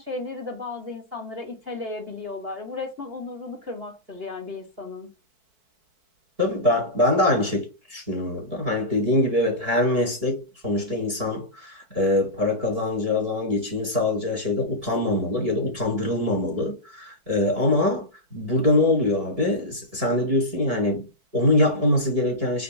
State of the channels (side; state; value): left; late; 4.6 ms